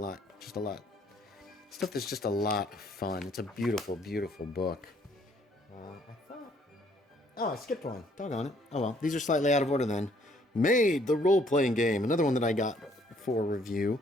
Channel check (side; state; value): both; normal; correlation 0.64